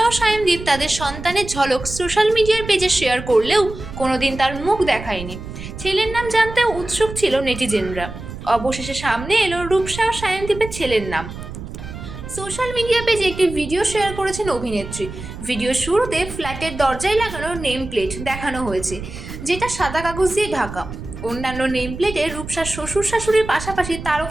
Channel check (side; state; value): right; noise; rumble, 11 dB below the sound